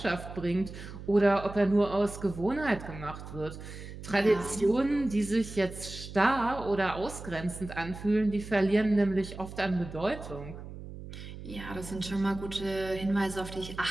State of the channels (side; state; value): right; noise; hum, 12 dB below the sound